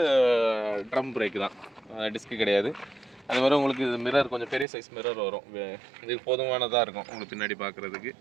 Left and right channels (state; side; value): drops out; left; at 4.7 s